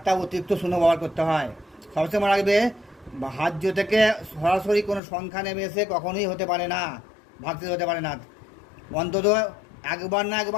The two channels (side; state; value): right; drops out; at 5.0 s